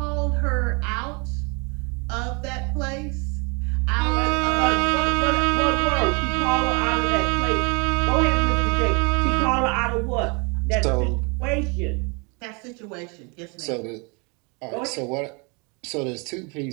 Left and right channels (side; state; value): left; quieter; 31.6 dB